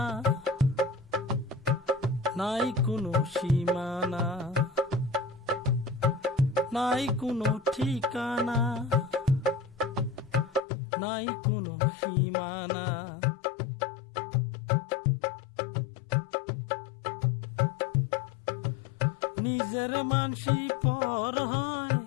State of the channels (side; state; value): right; drops out; at 10.6 s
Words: নাই কোনো সীমানা, নাই কোনো ঠিকানা, নাই কোনো সীমানা। নিজের মানসি পর হয়,